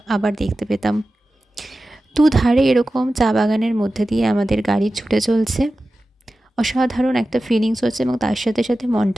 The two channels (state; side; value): normal; both; correlation 0.94